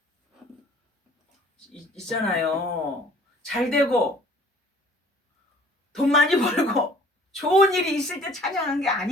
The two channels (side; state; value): both; normal; correlation 0.52